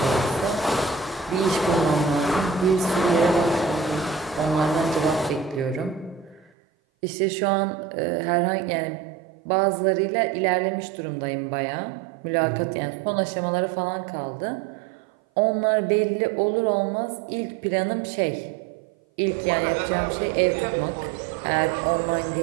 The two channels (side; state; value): left; drops out; at 6.5 s